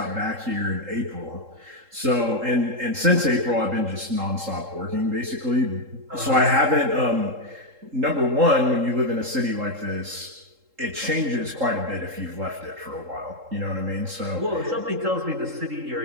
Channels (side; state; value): left; late; 3.7 ms